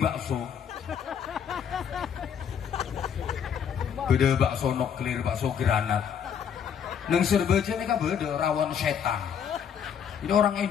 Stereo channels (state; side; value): quieter; right; 7.9 dB